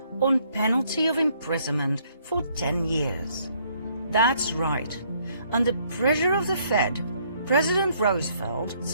on penalty of imprisonment for 10 years. That's right. Under pressure of the Fed, President Roosevelt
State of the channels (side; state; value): both; inverted; correlation -0.67